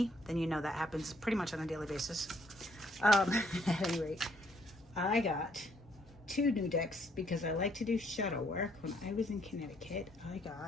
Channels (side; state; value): both; normal; correlation 0.68